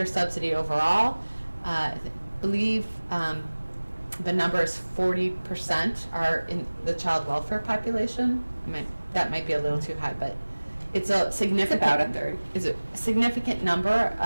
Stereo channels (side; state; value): both; inverted; correlation -1.00